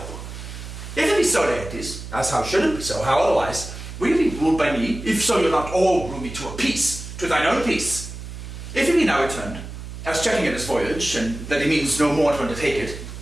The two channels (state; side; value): noise; right; hum, 11 dB below the sound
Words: If it be so, Laertes, as how should it be so, how otherwise, will you be ruled by me, if so you'll not all rule me to a peace, to thine own peace? If he be now returned, as checking at his voyage, and that he means no more to undertake it,